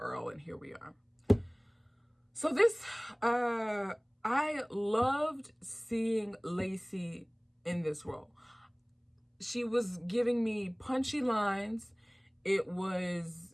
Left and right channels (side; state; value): both; identical; correlation 1.00